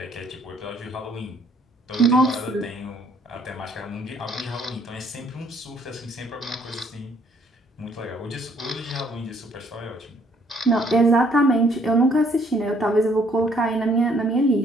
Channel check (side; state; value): both; normal; correlation 0.64